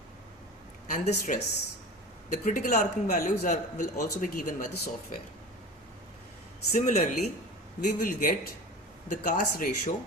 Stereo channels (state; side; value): normal; both; correlation 0.35